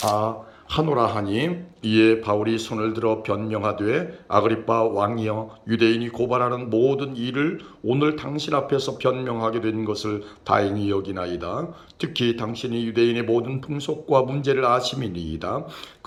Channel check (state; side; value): identical; both; correlation 1.00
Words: 하노라 하니 이에 바울이 손을 들어 변명하되 아그리빠 왕이여 유대인이 고발하는 모든 일을 오늘 당신 앞에서 변명하게 된 것을 다행히 여기나이다. 특히 당신이 유대인의 모든 풍속과 문제를 아심이니이다.